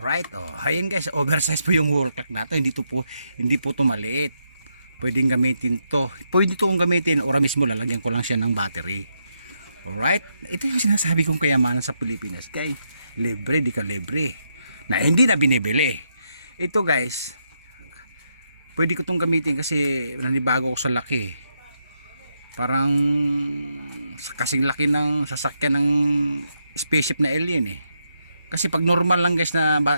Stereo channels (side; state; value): both; inverted; correlation -0.81